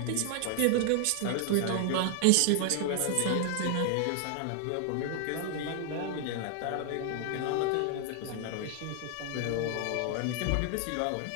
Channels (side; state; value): both; different; correlation 0.00